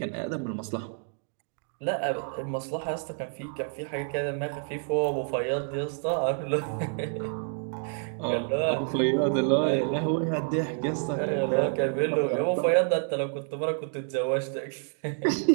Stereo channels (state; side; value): silent; left; 59 dB below the other